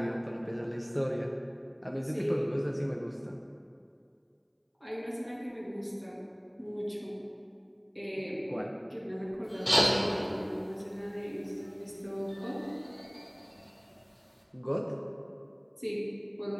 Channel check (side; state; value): both; identical; correlation 1.00